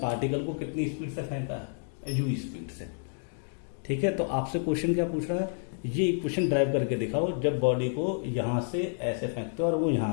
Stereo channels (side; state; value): right; silent; digital silence